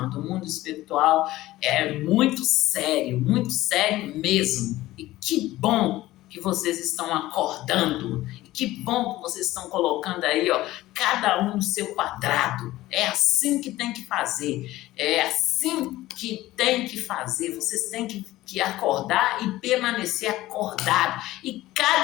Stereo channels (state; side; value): quieter; right; 16.6 dB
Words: O mundo espiritual é muito sério mesmo. E que bom que vocês estão acordando. E que bom que vocês estão colocando aí, ó, cada um no seu quadrado. É assim que tem que fazer. É assim que tem que fazer. Vocês têm que acordar e permanecer acordado. E